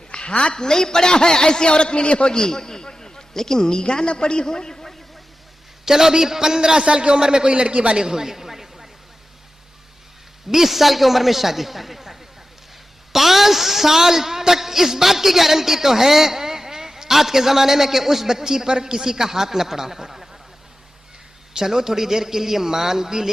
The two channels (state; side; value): normal; both; correlation 0.93